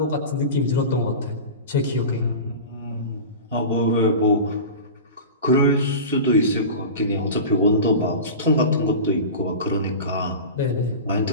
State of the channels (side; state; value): both; inverted; correlation -0.30